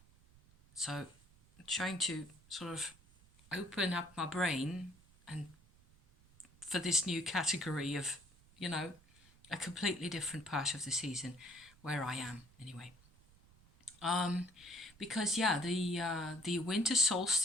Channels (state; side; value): noise; right; rumble, 27 dB below the sound